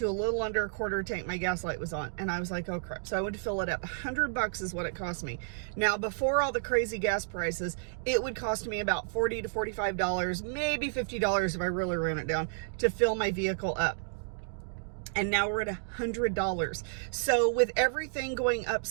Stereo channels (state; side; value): silent; left; digital silence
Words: a little under a quarter tank. My gas light was on and I was like, oh crap. So I went to fill it up. $100 is what it cost me. Now, before all the crazy gas prices, it would cost me about $40 to $45, maybe $50 if I really ran it down to fill my vehicle up. And now we're at $100. So with everything going up